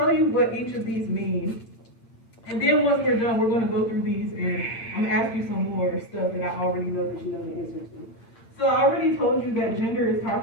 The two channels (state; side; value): late; right; 8.8 ms